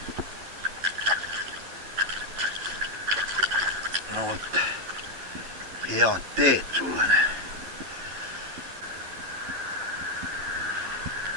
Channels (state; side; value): late; left; 10 ms